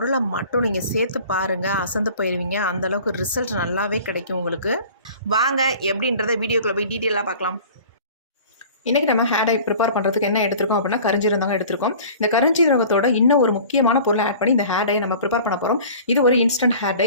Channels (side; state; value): both; inverted; correlation -0.44